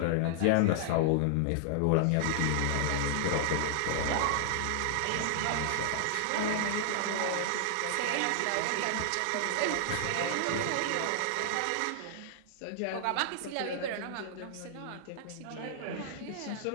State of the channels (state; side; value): different; both; correlation -0.01